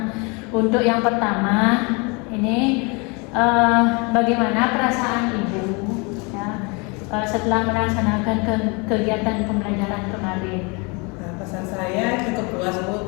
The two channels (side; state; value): right; quieter; 30.2 dB